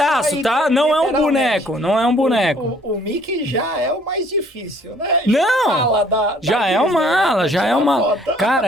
tá? Não é um boneco, não é um boneco. O Mickey já é o mais difícil, né? Já é uma.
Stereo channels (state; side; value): normal; both; correlation 0.59